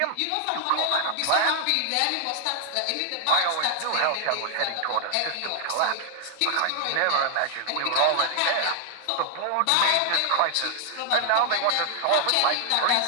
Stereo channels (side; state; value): both; different; correlation 0.00